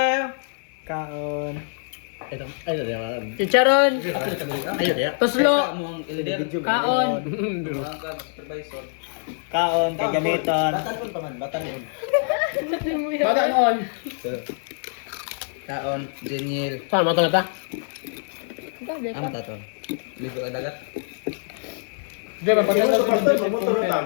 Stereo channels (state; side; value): silent; right; 57 dB below the other